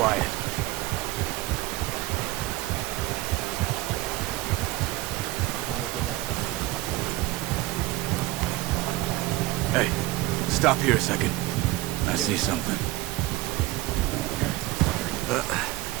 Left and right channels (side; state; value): left; quieter; 17.5 dB